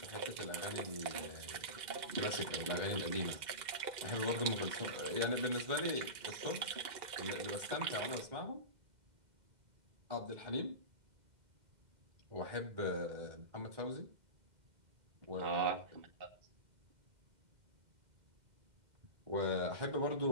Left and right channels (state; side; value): late; left; 2.1 ms